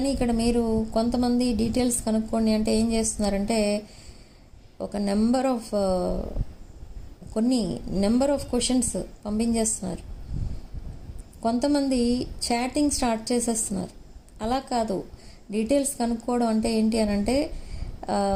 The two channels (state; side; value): identical; both; correlation 1.00